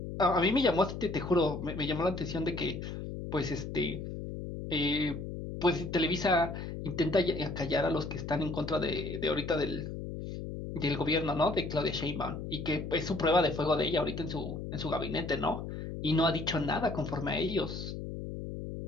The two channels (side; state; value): left; noise; hum, 7 dB below the sound